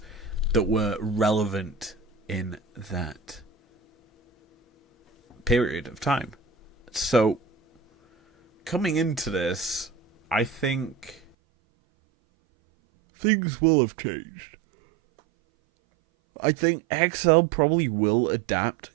that were relevant in that period of time. So, coming into this, I think things will have changed. I think XL probably will adapt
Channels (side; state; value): left; drops out; at 11.3 s